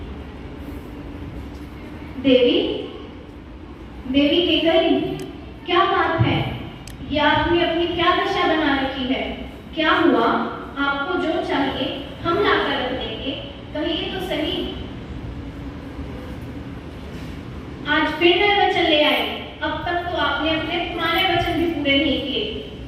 देवी, देवी केकई, क्या बात है? ये आपने अपनी क्या दशा बना रखी है? क्या हुआ? आपको जो चाहिए हम लाकर रख देंगे, कहिए तो सही। आज फिर नए वचन ले आए। अब तक तो आपने अपने पुराने वचन भी पूरे नहीं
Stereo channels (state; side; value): identical; both; correlation 1.00